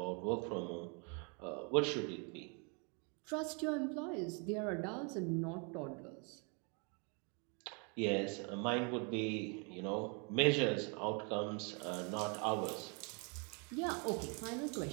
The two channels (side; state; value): left; quieter; 35.2 dB